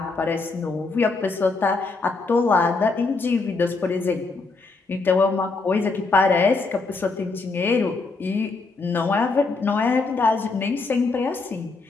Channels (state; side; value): quieter; right; 3.9 dB